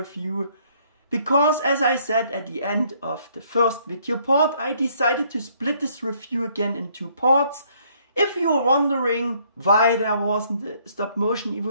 Because as I said at the end of the first video part, I decided to split this review again in two parts. If you're wondering why there wasn't a stop motion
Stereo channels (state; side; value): inverted; both; correlation -0.65